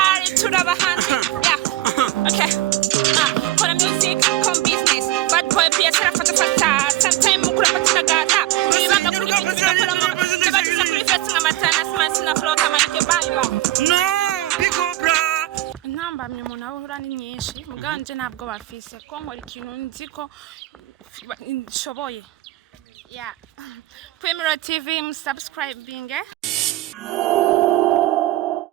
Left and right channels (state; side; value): quieter; left; 15.4 dB